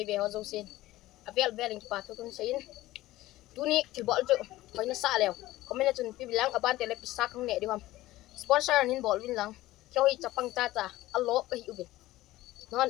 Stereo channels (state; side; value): quieter; right; 16.7 dB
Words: ho zosin. Avel veling pa to kun sayin. Tuni kibol jo. Pag nasa lew. Komen na tun pibilang aban tele pisakang ne diwam. Sponsor nin bol win lang. Kyo hi chapang tata allo kahi ubin. Non,